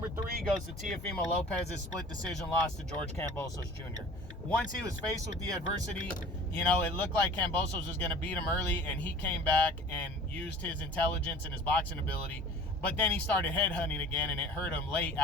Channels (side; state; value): both; normal; correlation 0.44